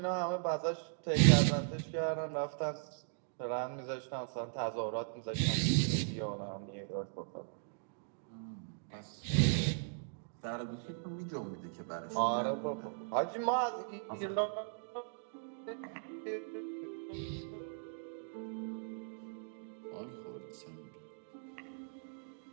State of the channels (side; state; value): left; silent; digital silence